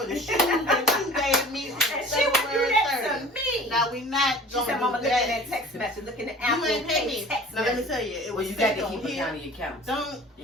the shoes that you gave me on And she would do February that 30th. to me. Now we not She gonna said, do Mama, look at that that. text message. Look at the You Apple ain't pay Pay me. text Now let me message. tell you, it Well, was you got sent to on keep here. account of your accounts. Don't. You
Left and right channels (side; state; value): both; normal; correlation 0.44